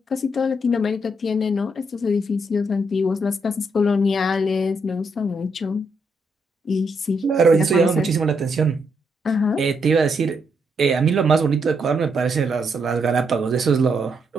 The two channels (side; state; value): both; normal; correlation 0.77